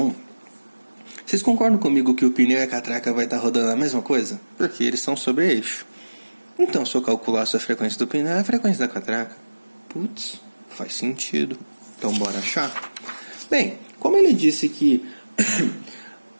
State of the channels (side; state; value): both; inverted; correlation -1.00